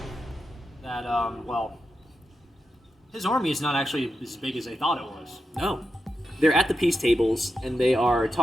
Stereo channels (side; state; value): both; normal; correlation 0.88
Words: that his army is not actually as big as they thought it was. no, they're at the peace tables and they are